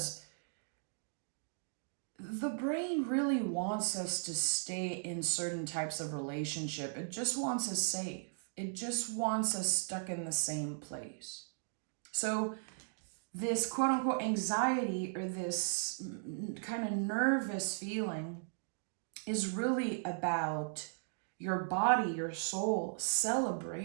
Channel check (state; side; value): silent; left; digital silence